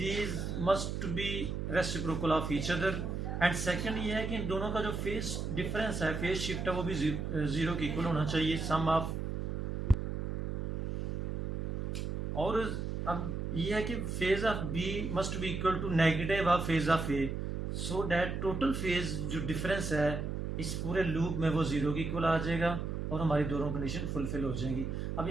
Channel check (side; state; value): right; noise; hum, 3 dB below the sound